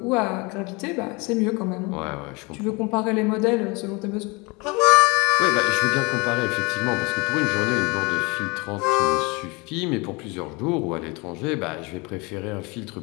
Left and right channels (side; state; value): right; quieter; 27.2 dB